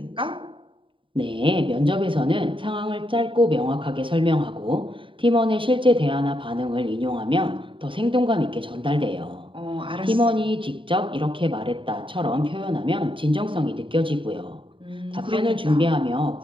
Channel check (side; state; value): left; late; 0.25 ms